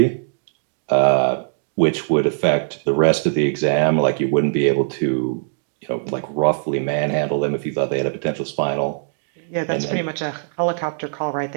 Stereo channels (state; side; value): silent; left; digital silence